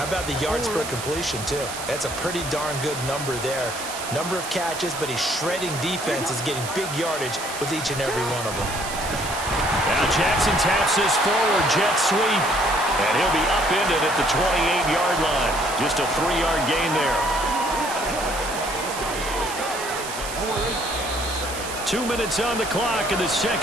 about the yards per completion, too? That's a pretty darn good number there. Number of catches, but he's shredding defenses, getting big yardage with each and every one of them. Now Jackson taps this forward jet sweep. And he'll be upended at the 28-yard line. Just a 3-yard gain there. 2 minutes on the clock in the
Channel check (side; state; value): right; noise; hiss, 9 dB below the sound